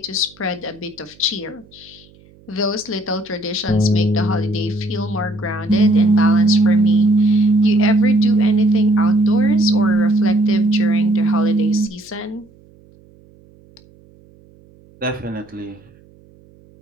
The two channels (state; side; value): noise; right; hum, 28 dB below the sound